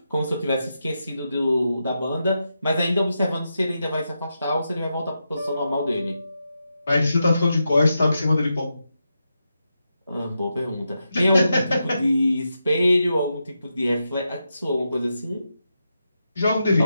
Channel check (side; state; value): both; inverted; correlation -0.87